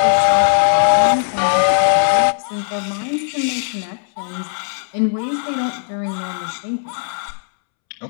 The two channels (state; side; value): silent; right; 67 dB below the other